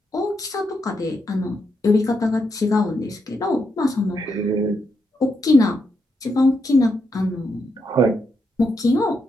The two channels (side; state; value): both; normal; correlation 0.82